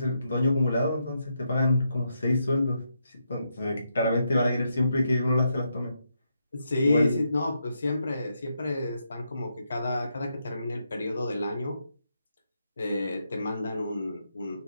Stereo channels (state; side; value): inverted; both; correlation -0.81